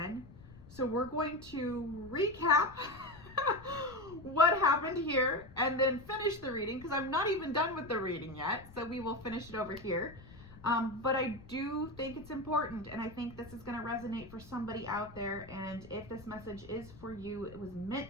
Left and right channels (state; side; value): noise; left; rumble, 19 dB below the sound